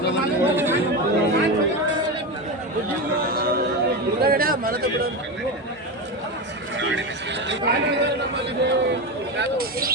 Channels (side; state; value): both; normal; correlation 0.18